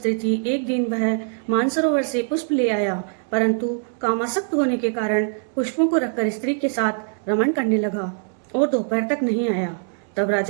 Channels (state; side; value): silent; left; 64 dB below the other